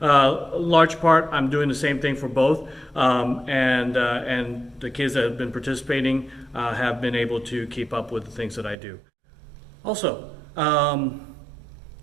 Large part, I'm doing the same thing for both, and the kids that have been participating have been able to keep up with the things that I do. Also,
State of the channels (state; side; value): drops out; left; at 8.8 s